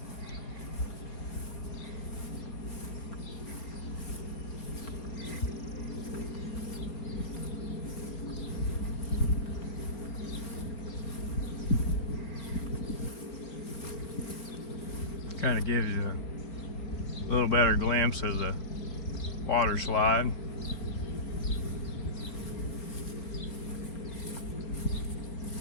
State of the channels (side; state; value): right; late; 4.3 ms